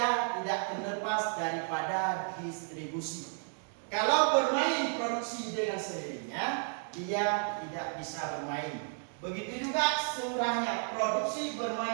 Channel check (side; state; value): left; silent; 56 dB below the other